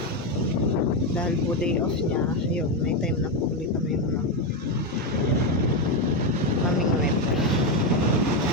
Dahil po day off niya, ayun, may time na po ulit kami mamingwit.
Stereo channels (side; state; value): both; normal; correlation 0.09